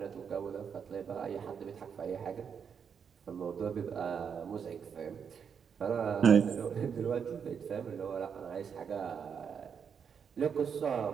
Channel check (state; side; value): quieter; left; 7.0 dB